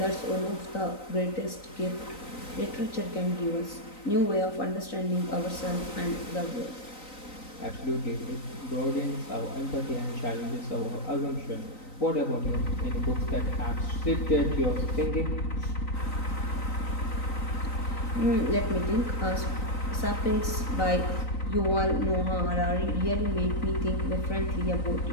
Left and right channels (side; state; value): right; late; 3.9 ms